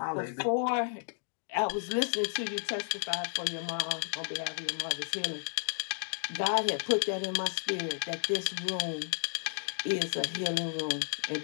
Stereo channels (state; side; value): silent; right; digital silence